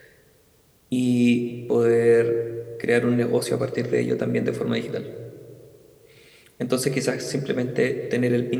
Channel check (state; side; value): identical; both; correlation 1.00